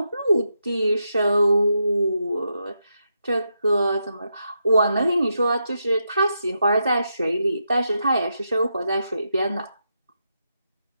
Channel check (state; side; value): inverted; both; correlation -0.84